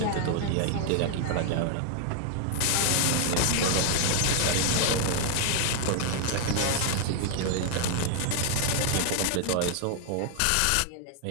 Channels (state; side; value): different; both; correlation 0.00